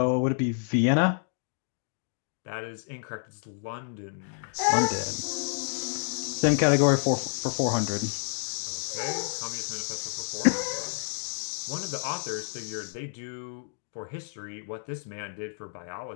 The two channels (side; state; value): right; silent; digital silence